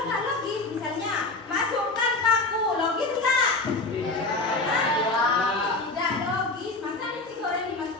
nggak logis, misalnya masukkan paku, logis nggak? Tidak logis. Masa nasi goreng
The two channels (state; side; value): quieter; right; 3.2 dB